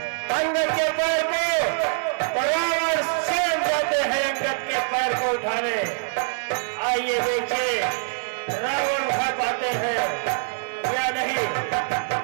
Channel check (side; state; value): left; silent; 57 dB below the other